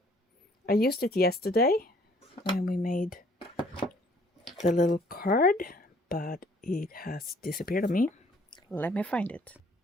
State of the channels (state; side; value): normal; both; correlation 0.60